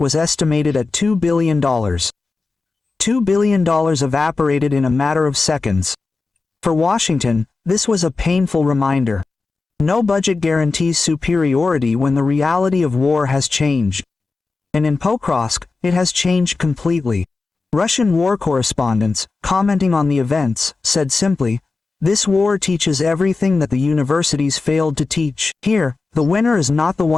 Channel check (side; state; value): right; quieter; 4.0 dB